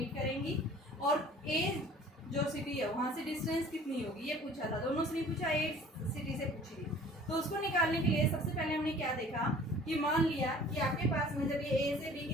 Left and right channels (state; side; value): normal; both; correlation 0.49